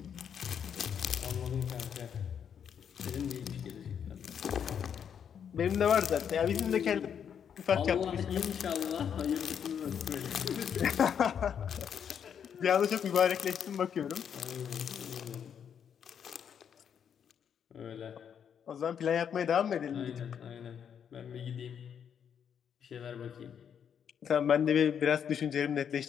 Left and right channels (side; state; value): right; quieter; 8.1 dB